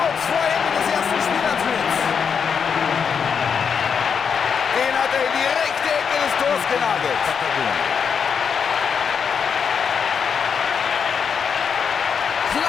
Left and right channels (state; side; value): quieter; right; 6.6 dB